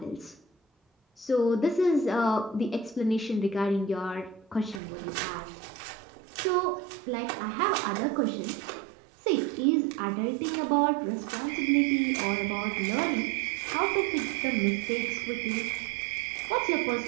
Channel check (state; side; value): drops out; left; at 4.8 s